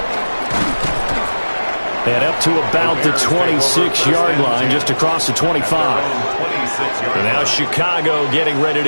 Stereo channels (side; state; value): both; inverted; correlation -1.00